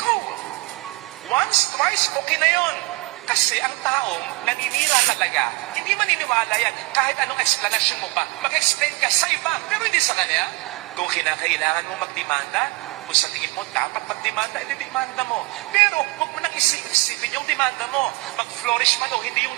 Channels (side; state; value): left; quieter; 25.2 dB